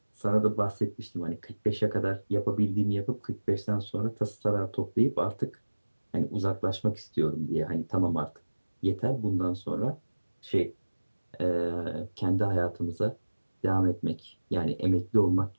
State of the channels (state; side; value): inverted; both; correlation -1.00